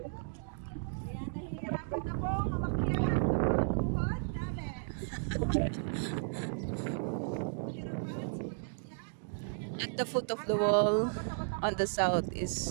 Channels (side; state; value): left; silent; digital silence